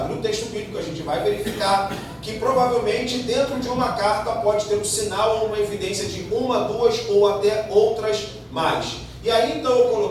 o texto bíblico, a gente vai verificar que provavelmente dentro de uma carta pode ter um sinal ou uma evidência de uma, duas ou até outras mais. E aí então eu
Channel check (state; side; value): identical; both; correlation 1.00